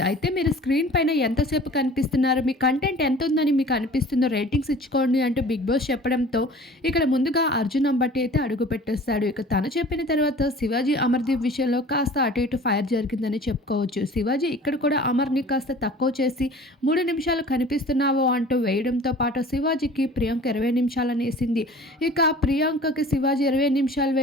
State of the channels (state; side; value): normal; both; correlation 0.45